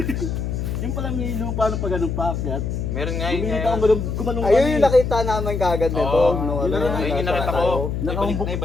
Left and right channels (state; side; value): noise; left; hum, 3 dB below the sound